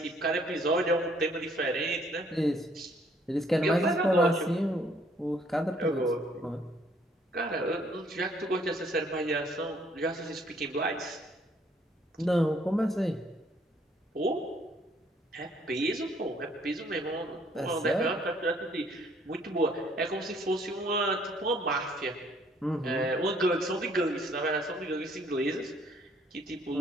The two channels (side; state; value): both; normal; correlation 0.63